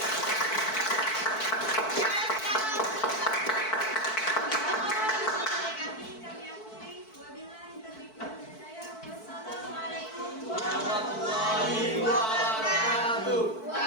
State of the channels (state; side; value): late; right; 4.6 ms